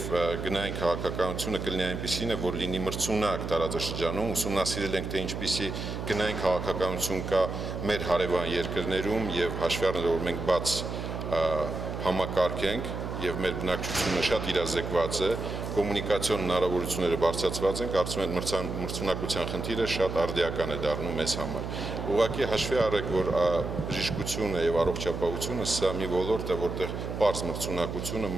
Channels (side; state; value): right; noise; hum, 5 dB below the sound